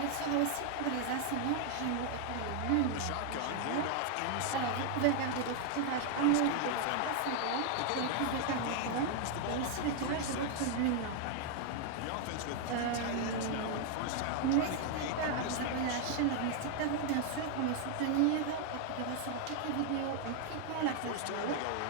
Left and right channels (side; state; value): both; different; correlation 0.00